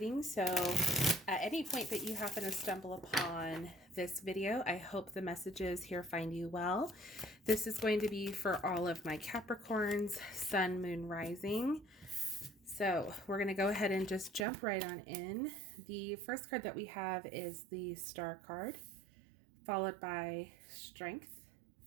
So at any point that you happen to stumble upon this video, I hope the messages here find you well. This is going to be for all of my Capricorns, Sun, Moon, Rising. So we're going to go ahead and just jump right on in. The first card that we have is the Star card, followed by Strength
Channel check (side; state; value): left; drops out; at 14.5 s